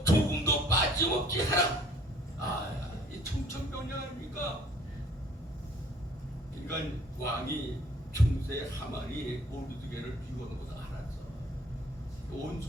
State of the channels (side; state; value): both; normal; correlation 0.56